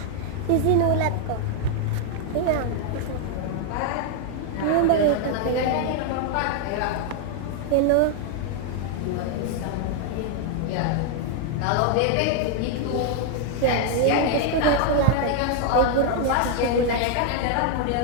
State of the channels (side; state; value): both; different; correlation 0.00